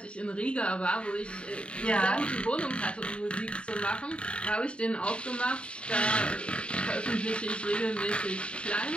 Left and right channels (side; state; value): right; late; 0.057 ms